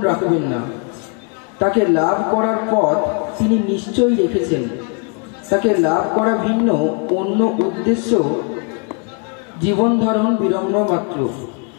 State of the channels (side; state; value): right; quieter; 34.4 dB